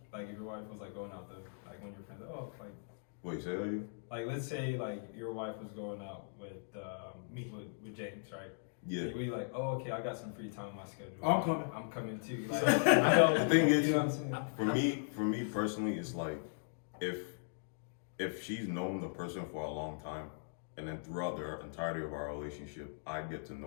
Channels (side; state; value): right; silent; digital silence